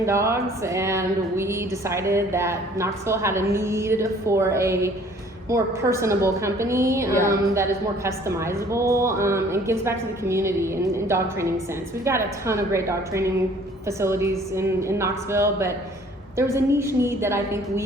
dogs, and we decided that Knoxville had a need for a more personable company that is more customizable and gives back to the community in dog training sense. We've got a ton of great dog training facilities in Knoxville, but there was a niche need that I think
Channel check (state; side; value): normal; both; correlation 0.55